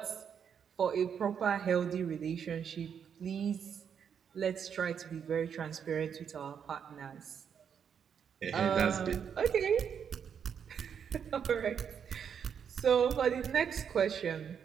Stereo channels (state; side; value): quieter; left; 7.6 dB